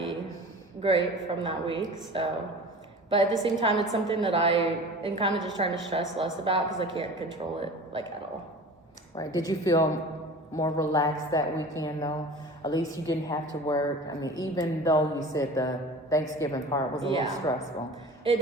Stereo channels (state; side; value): normal; both; correlation 0.39